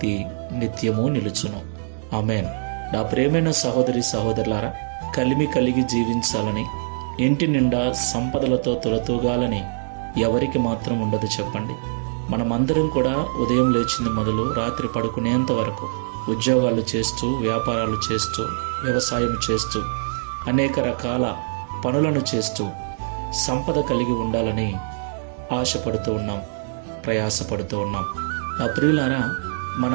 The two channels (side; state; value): left; silent; 63 dB below the other